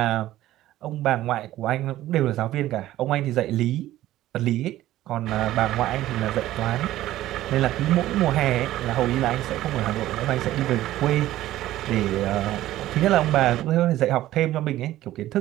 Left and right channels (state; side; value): quieter; left; 14.6 dB